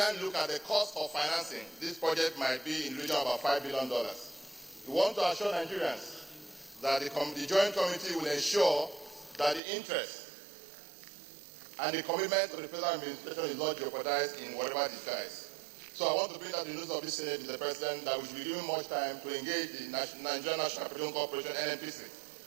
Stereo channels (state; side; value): drops out; left; at 9.6 s